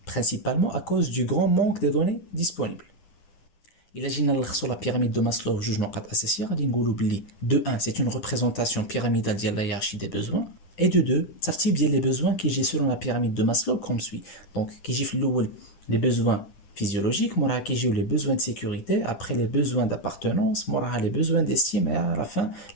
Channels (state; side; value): late; right; 10 ms